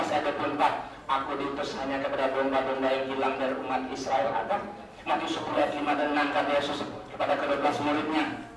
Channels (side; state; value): both; identical; correlation 1.00